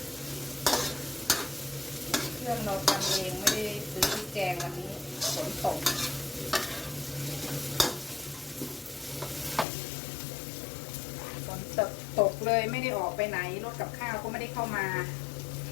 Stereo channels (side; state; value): right; drops out; at 9.7 s